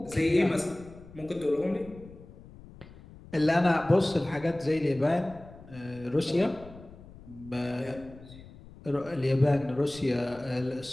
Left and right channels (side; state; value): left; noise; rumble, 19 dB below the sound